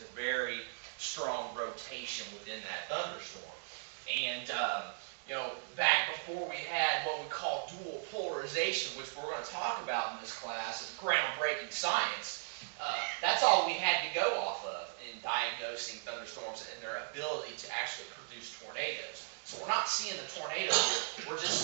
a very strong rotation within that thunderstorm. And you know, back before we had what we call dual polarization, which we're going to talk about in this class, is groundbreaking science. That's all we had to go off of in diagnosing thunderstorms and their ability to actually produce tornadoes. So we're not seeing the tornado here, we're just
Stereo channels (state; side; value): silent; left; digital silence